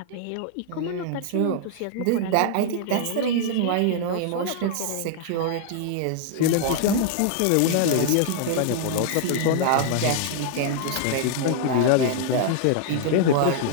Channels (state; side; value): different; both; correlation -0.01